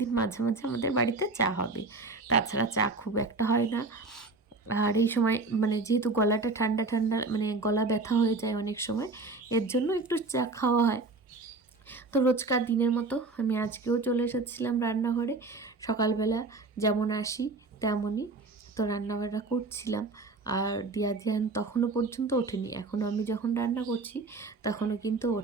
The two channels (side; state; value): left; quieter; 3.6 dB